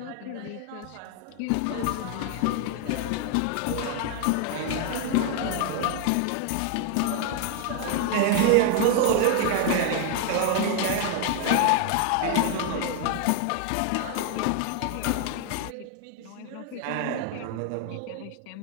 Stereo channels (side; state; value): both; different; correlation 0.00